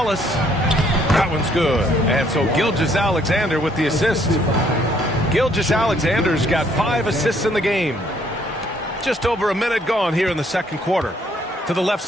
That one's good. And so Gilgeous-Alexander with the assist. Gilgeous-Alexander's got 5 assists in the game. Just over a minute gone here in the second quarter. To the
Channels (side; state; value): both; normal; correlation 0.66